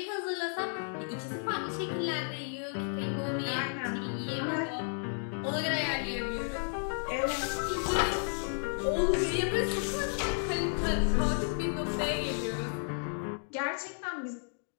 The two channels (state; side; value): silent; right; 56 dB below the other